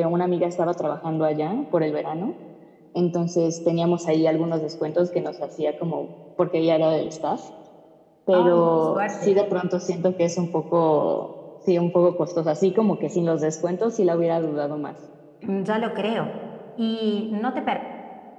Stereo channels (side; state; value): both; identical; correlation 1.00